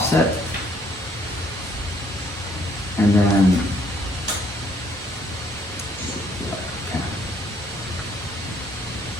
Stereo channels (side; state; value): both; normal; correlation 0.65